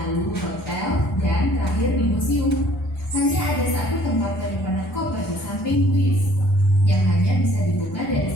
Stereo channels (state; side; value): normal; both; correlation 0.56